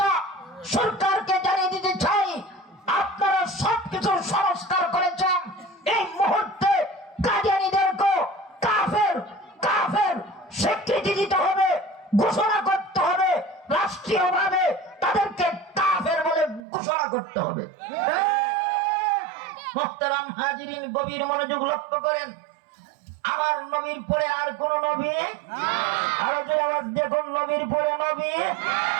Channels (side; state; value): left; drops out; at 16.6 s